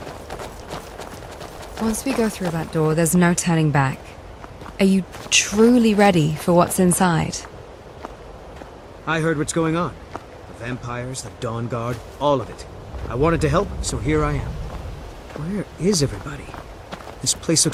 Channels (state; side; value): identical; both; correlation 1.00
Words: Once we go through that door, there's no turning back. Are you truly ready for what's inside? I heard what's going on. The vampires, the Dawnguard, all of it. I wanted to help, so here I am. Where is everybody? This place